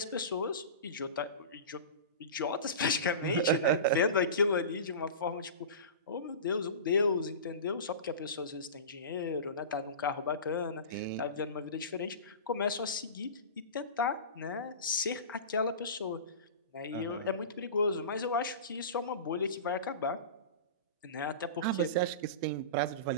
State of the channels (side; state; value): both; inverted; correlation -0.30